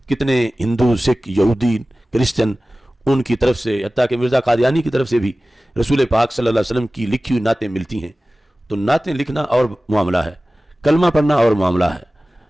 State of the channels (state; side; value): normal; both; correlation 0.97